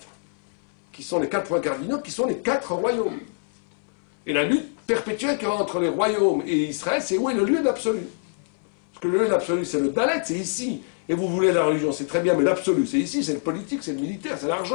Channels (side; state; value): right; silent; 62 dB below the other